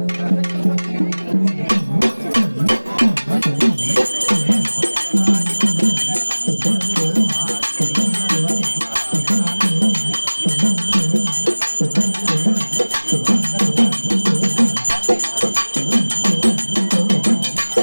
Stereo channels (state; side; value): inverted; both; correlation -1.00